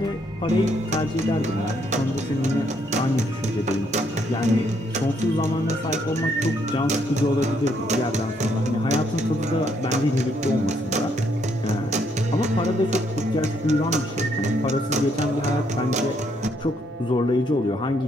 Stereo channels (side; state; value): both; normal; correlation 0.72